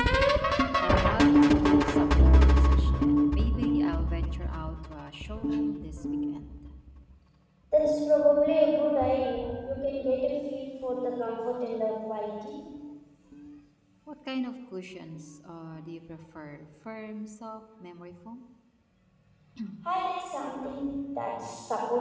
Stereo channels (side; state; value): both; identical; correlation 1.00